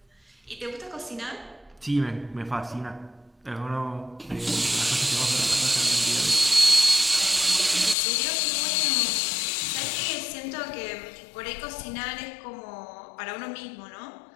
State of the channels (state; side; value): drops out; right; at 8.0 s